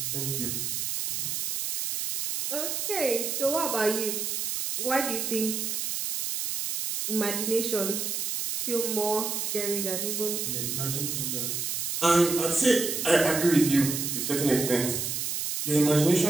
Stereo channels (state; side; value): noise; right; hiss, 2 dB below the sound